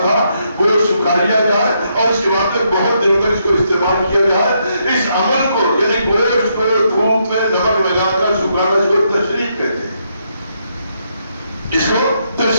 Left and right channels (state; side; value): inverted; both; correlation -0.77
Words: تھا. گوشت سکھا لیا جائے اور اس کے بعد میں بہت دنوں تک اس کو استعمال کیا جائے. اس عمل کو یعنی گوشت کو دھوپ میں نمک لگا کر سکھانا، اس کو تشریق کہتے ہیں. اس کو